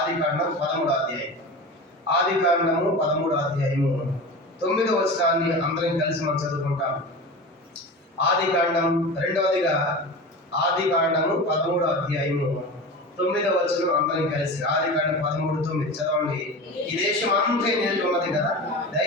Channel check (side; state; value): both; normal; correlation 0.30